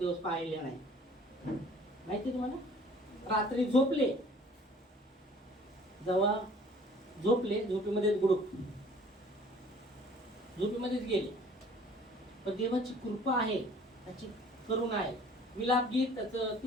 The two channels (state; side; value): normal; both; correlation 0.52